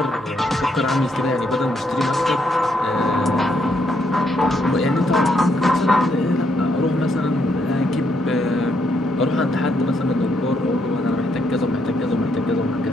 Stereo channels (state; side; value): normal; both; correlation 0.75